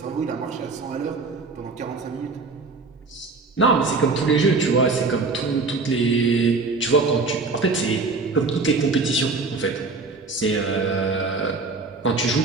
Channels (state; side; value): quieter; left; 4.0 dB